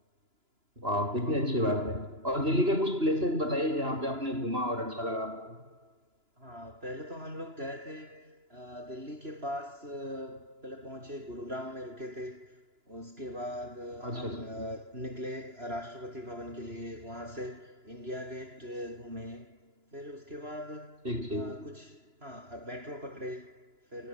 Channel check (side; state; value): left; late; 2.9 ms